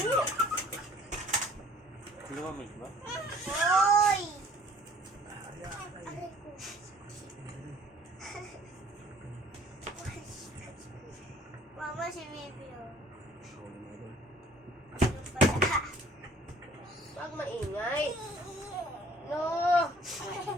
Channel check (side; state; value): both; normal; correlation 0.55